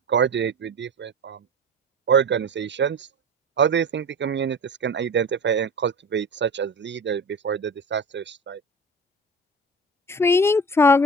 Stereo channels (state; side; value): normal; both; correlation 0.32